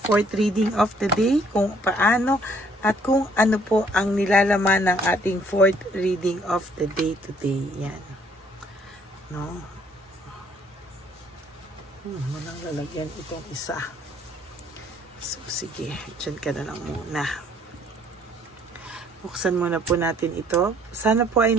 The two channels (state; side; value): normal; both; correlation 0.63